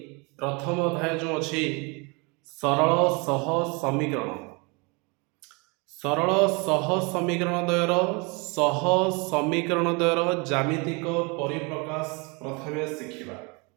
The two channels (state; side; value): quieter; left; 29.9 dB